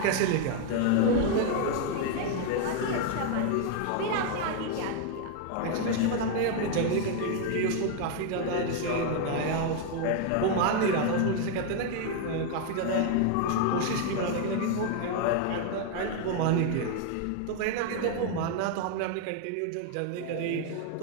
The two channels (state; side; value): different; both; correlation 0.00